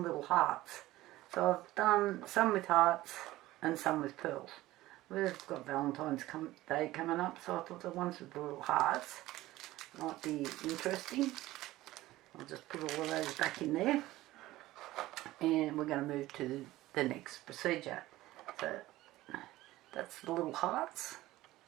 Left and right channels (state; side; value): quieter; left; 16.9 dB